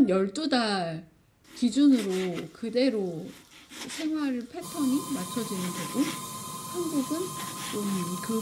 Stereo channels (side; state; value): both; identical; correlation 1.00